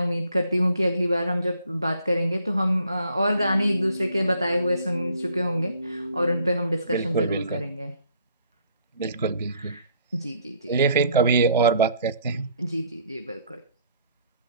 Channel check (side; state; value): both; inverted; correlation -0.62